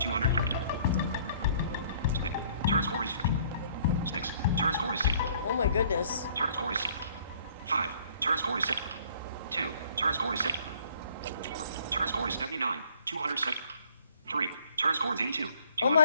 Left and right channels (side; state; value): both; inverted; correlation -0.59